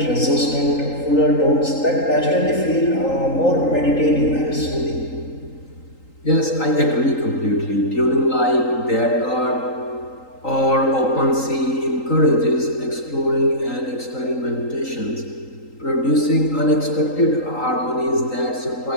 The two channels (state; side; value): late; right; 3.8 ms